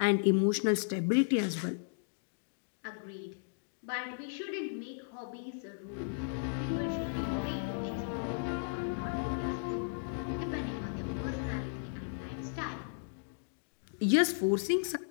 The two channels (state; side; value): silent; right; digital silence